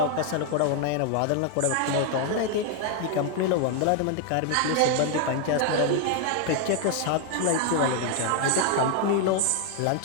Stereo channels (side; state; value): both; different; correlation 0.00